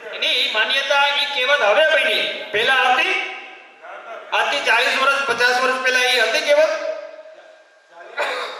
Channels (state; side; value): identical; both; correlation 1.00